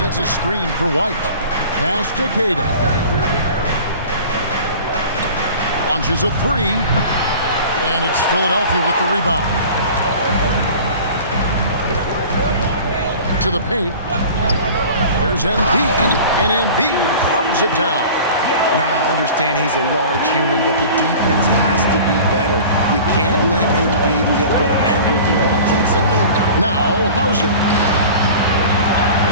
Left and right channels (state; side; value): inverted; both; correlation -0.41